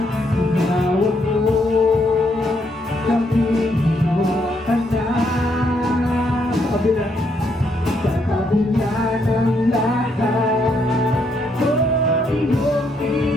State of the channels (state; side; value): normal; both; correlation 0.74